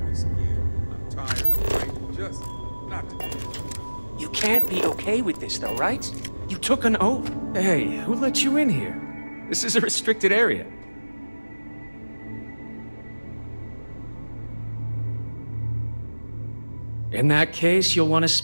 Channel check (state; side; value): inverted; both; correlation -1.00